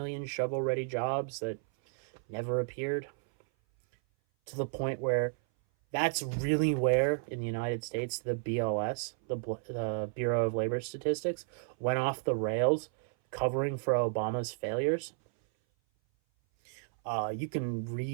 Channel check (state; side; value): silent; left; 56 dB below the other